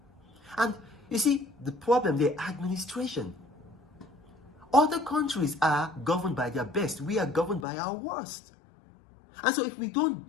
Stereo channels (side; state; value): right; drops out; at 7.7 s